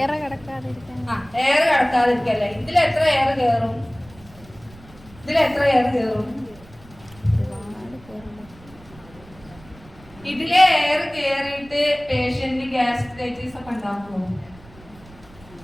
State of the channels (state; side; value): noise; right; rumble, 23 dB below the sound